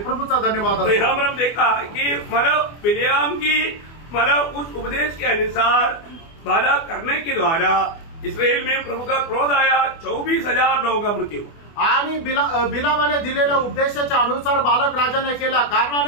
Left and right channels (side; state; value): right; late; 24 ms